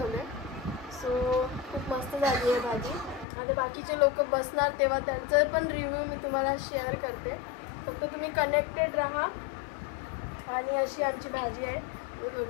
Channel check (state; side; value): drops out; right; at 3.2 s